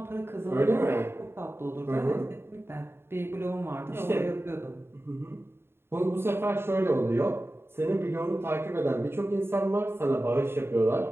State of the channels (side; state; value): left; late; 0.11 ms